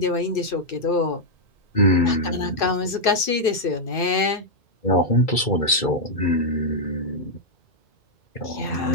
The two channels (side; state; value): right; late; 2.3 ms